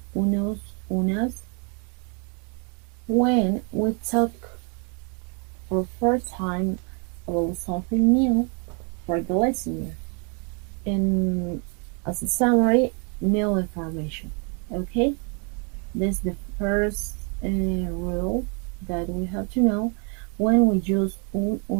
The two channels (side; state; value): left; quieter; 36.9 dB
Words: unos, unas when we talk for first time about something new for the listener. And as a summary, new information. Okay, this is the first rule that we have to know when we use un,